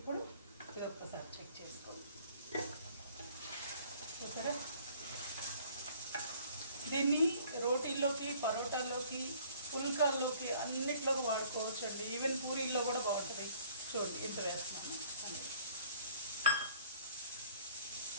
ఇది ఒక్కసారి చెక్ చేసుకోండి. చూసారా, దీన్ని రోటీల్లోకి, పరోటాల్లోకి, పుల్కాల్లోకి అన్నిట్లోకి వాడుకోవచ్చు అండి. ఈవెన్ పూరీల్లో కూడా బాగుంటుంది. చూడండి ఎంత వేస్తున్నాను.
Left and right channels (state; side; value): inverted; both; correlation -0.55